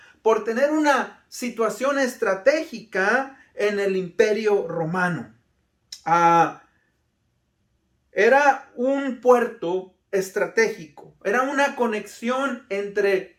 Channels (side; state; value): both; identical; correlation 1.00